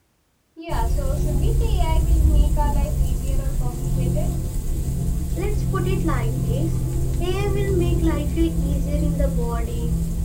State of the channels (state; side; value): identical; both; correlation 1.00